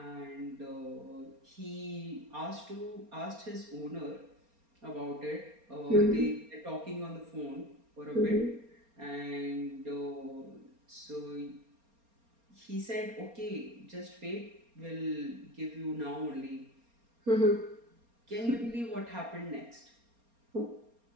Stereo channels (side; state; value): left; late; 4.3 ms